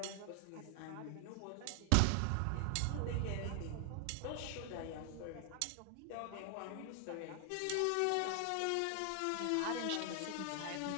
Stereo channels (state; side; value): different; both; correlation 0.00